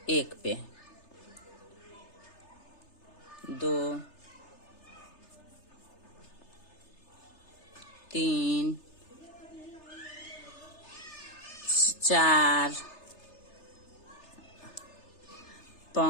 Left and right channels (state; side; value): late; right; 3.3 ms